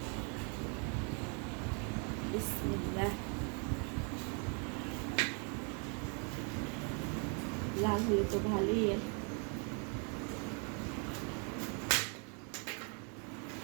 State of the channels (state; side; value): quieter; left; 37.9 dB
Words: বিসমিল্লাহ। লাল হলে তো ভালোই।